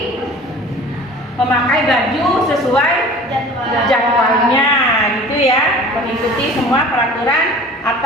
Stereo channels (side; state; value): both; normal; correlation 0.44